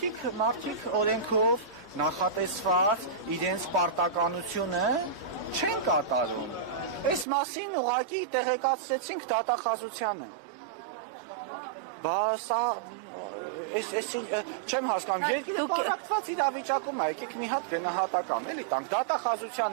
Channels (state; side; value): drops out; left; at 7.2 s